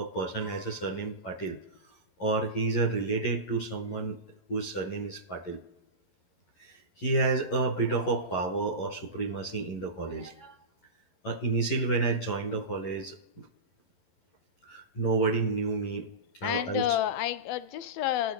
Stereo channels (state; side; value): late; right; 11 ms